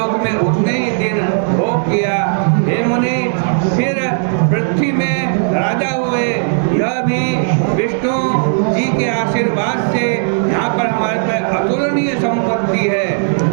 में उतने ही दिन भोग किया। हे मुनि, फिर पृथ्वी में राजा हुए। यह भी विष्णु जी के आशीर्वाद से यहाँ पर हमारे पास अतुलनीय संपत्ति है।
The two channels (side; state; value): left; silent; digital silence